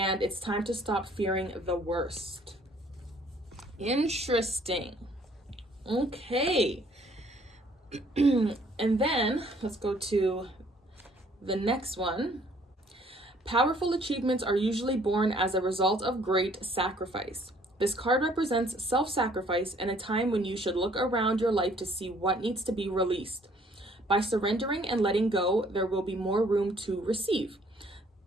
it's time to stop fearing the worst. Interesting. Okay. And then let's go to the next one. Powerful achievements are usually born as a result of great sacrifice. This card represents self-sacrifice and a time when you should look around your life to see what needs to be released. By surrendering and letting go, there will be more room to receive.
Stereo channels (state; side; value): normal; both; correlation 0.60